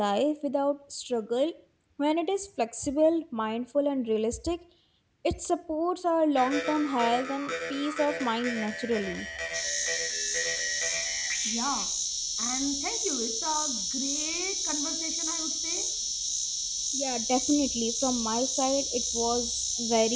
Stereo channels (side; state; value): both; identical; correlation 1.00